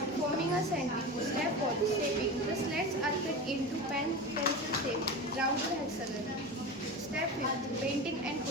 forming a sandwich. Step 4, shaping. The slats are cut into pencil shape, round or hexagon. Step 5, painting and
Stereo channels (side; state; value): both; normal; correlation 0.27